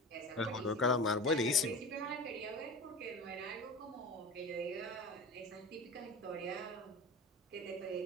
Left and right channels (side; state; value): both; normal; correlation 0.31